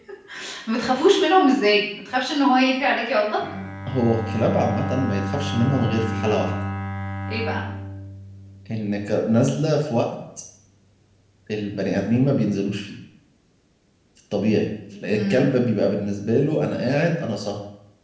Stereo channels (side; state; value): both; identical; correlation 1.00